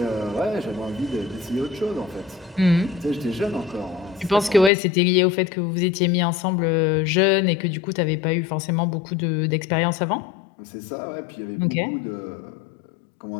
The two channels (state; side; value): drops out; right; at 4.7 s